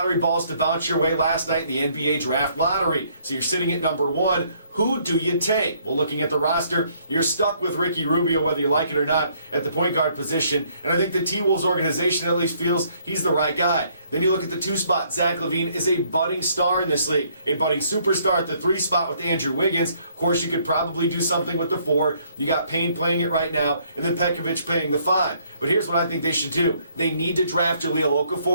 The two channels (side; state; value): both; inverted; correlation -0.66